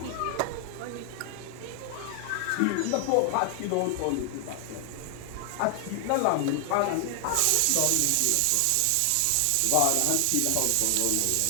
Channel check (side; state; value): both; different; correlation 0.00